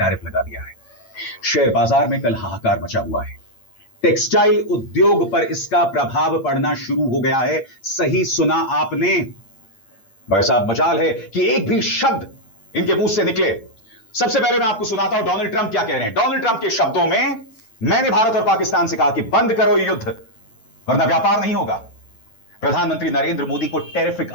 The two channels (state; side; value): late; right; 8.8 ms